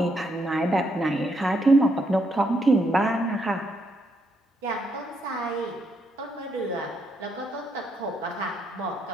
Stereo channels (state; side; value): normal; both; correlation 0.76